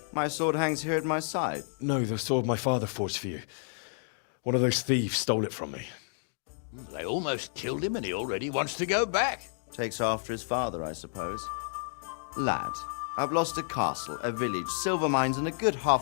My sword hangs here at my side. No, the sword my father forged for you. One of those thieves stole it from me. They almost killed him and he already wants to go back. Takes after his father, I suppose. Lad, I've lost a castle, a village, silver mines, and a good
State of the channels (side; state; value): right; silent; digital silence